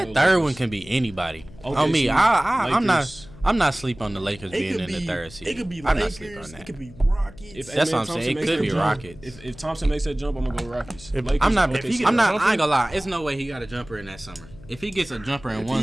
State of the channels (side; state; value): left; noise; hum, 20 dB below the sound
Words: gonna go third Lakers. one can be anybody. OKC, On me, I'm Lakers. not sleep on the Lakers It being could in be. the third seed. It could be I'm not sleep on Lakers. that. It could be Rockets. If That's what I'm Thompson saying. It makes could that be jump, Rockets. If Thompson makes that jump, I'm gonna go Rockets. If- Lakers, I'm not. If he OKC. get I'm not. jumper- I ain't gonna lie. It's no way he got a jumper in that summer. If he gets a jumper in If one